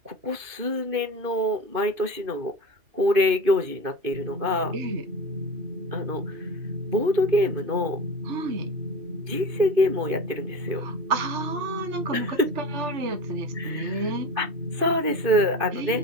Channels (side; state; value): left; late; 2.5 ms